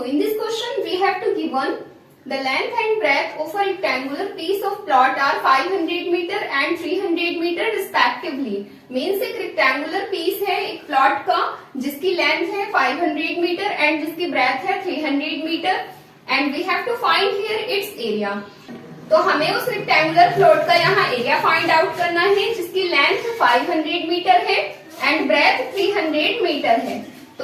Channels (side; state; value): both; identical; correlation 1.00